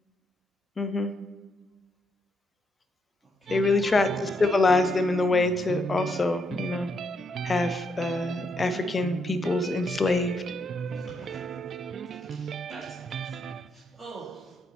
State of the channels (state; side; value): normal; both; correlation 0.77